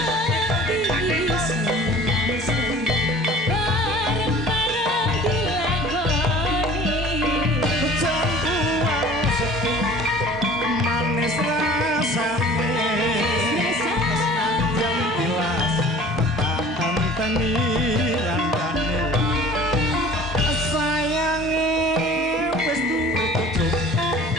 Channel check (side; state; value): both; normal; correlation 0.46